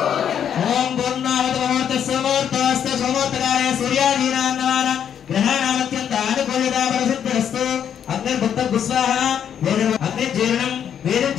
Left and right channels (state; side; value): quieter; right; 8.8 dB